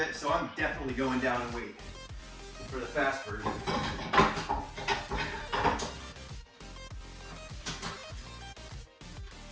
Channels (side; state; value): both; identical; correlation 1.00